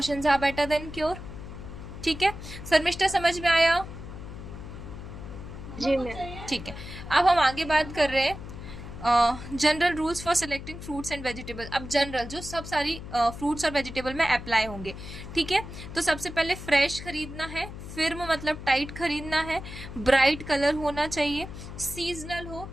are better than cure, ठीक है। शर्मिष्ठा समझ में आया? जी मैम। ठीक है, अब हम आगे बात कर रहे हैं general rules for selecting fruits and vegetable. अब जनरल जो सब सारी फ्रूट्स और वेजिटेबल में अप्लाई होंगे, ठीक है। तो सबसे पहले फ्रेश खरीदना है, फिर्म मतलब टाइट खरीदना है, ब्राइट कलर होना चाहिए, सीजनल हो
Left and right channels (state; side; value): noise; left; hum, 11 dB below the sound